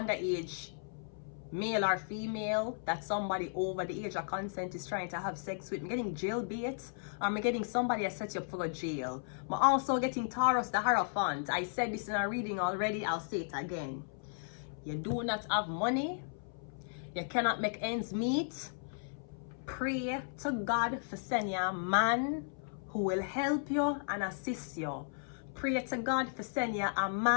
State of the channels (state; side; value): silent; right; 54 dB below the other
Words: underage male or female that somebody over the age of consent is trying to have sex with. I'm getting jailbait, or I'm getting somebody that set you up for a jail. I'm also getting Taurus the Hierophant. I said this in a reading already, I'll say it again. You do not have money, you cannot make ends meet. Pray to God for sending you a man who will help you and assist you. Pray to God for sending you a